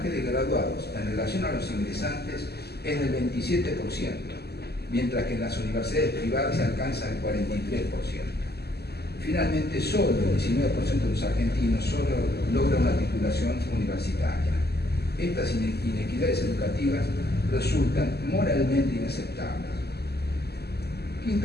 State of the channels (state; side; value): late; right; 0.47 ms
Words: de graduados en relación a los ingresantes es del 27%, mientras que en las universidades privadas se alcanza el 43%. Finalmente, solo el 19% de los argentinos solo logra una titulación universitaria. Estas inequidades educativas resultan moralmente inaceptables.